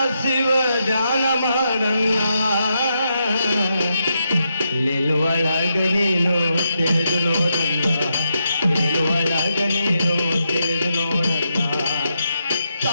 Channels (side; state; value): both; inverted; correlation -0.82